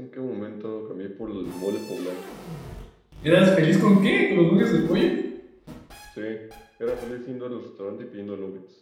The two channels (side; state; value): both; identical; correlation 1.00